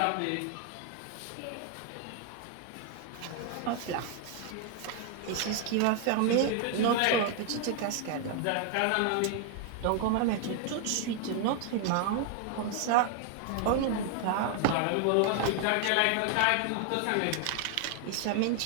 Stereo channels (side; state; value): both; different; correlation 0.00